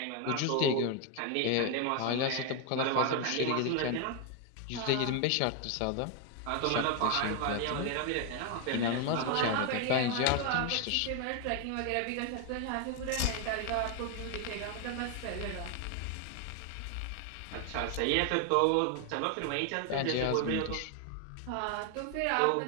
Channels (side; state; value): both; different; correlation 0.01